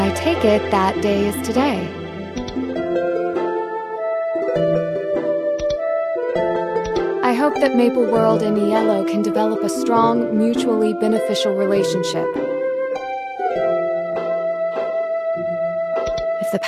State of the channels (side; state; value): both; identical; correlation 1.00